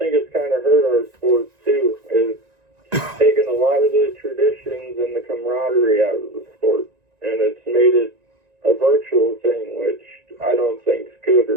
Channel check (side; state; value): left; late; 1.9 ms